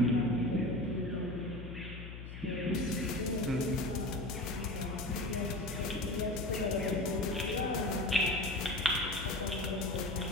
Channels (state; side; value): noise; left; hum, 10 dB below the sound